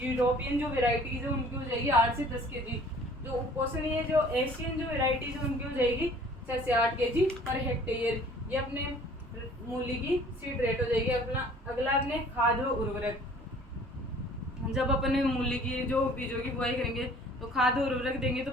जो वेराइटीज है उनकी हो जाएगी 8 से 10 kg। जो उपोष्णीय है जो एशियन जो वेराइटीज है उनकी हो जाएगी 6 से 8 kg पर हेक्टेयर। ये अपने मूली की सीड रेट हो जाएगी। अगला अपने खाद व उर्वरक। जब अपन मूली की जो बीजों की बुआई करेंगे तो खाद और उर्वरक देंगे, तो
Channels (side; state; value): both; normal; correlation 0.52